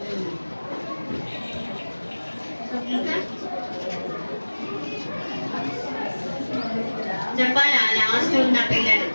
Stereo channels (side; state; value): both; inverted; correlation -1.00